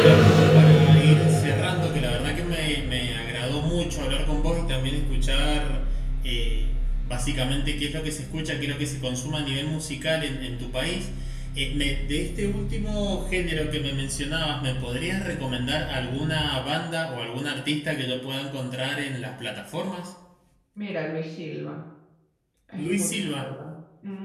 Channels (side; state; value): both; identical; correlation 1.00